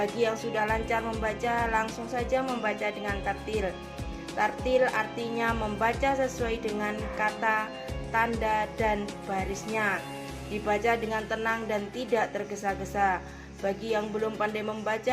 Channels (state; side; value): identical; both; correlation 1.00